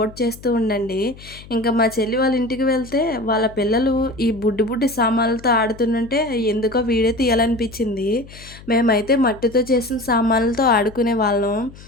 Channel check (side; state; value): left; noise; hum, 19 dB below the sound